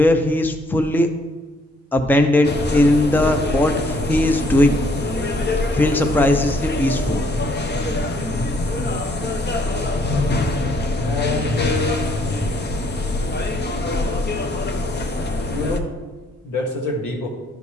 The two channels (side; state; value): both; normal; correlation 0.67